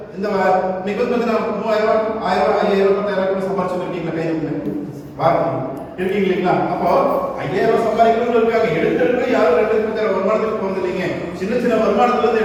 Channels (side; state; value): both; identical; correlation 1.00